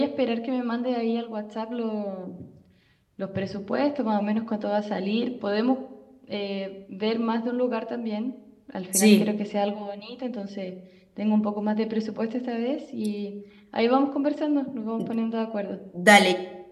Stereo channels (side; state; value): both; identical; correlation 1.00